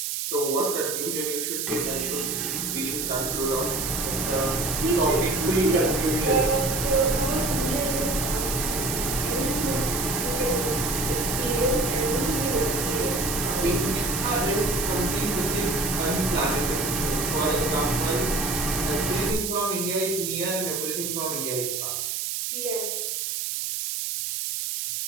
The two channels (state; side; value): noise; right; hiss, 2 dB below the sound